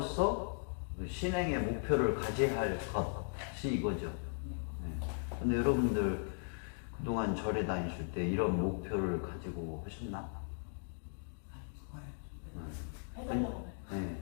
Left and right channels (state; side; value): silent; right; digital silence